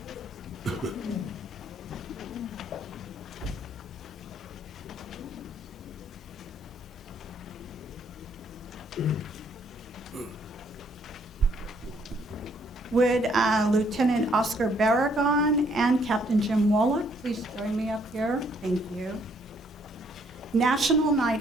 Would Lieutenant Oscar Barragon and Captain Jim Wallach please join me up here? Thank you. National Night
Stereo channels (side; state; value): both; normal; correlation 0.67